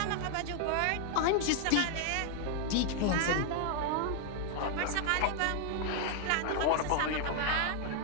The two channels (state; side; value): different; both; correlation 0.00